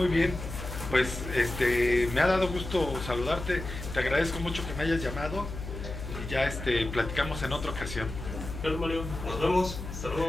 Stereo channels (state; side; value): noise; left; hum, 8 dB below the sound